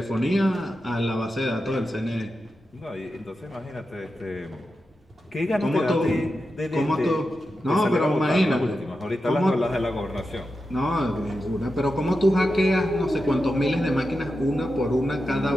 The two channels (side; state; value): both; normal; correlation 0.90